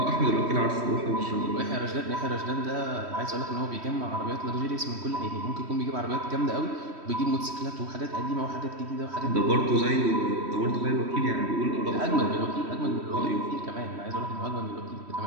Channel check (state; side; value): late; left; 3.1 ms